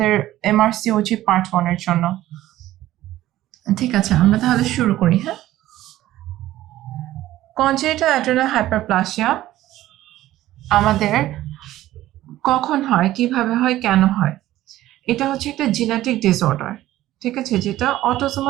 এমআরসিওজি পার্ট 1 এর জন্য। ঠিক আছে, আমরা তাহলে শুরু করি। হ্যাঁ, কনজেনিটাল অ্যাড্রেনাল হাইপারপ্লাসিয়া আমাদের কখন হয়, কিভাবে হয়, কেন হয়? এটা হচ্ছে একটা জেনেটিক ডিসঅর্ডার, ঠিক আছে, যেটা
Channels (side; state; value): left; quieter; 14.8 dB